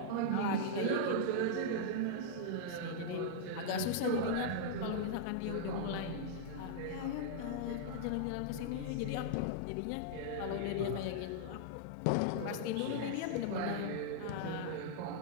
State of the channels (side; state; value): both; different; correlation -0.01